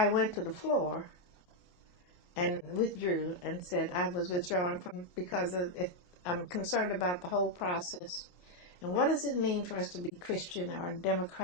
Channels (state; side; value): late; right; 28 ms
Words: went to the floor and withdrew and said I was withdrawing because I'm concerned about the whole process. And what does it mean for us to be Christian or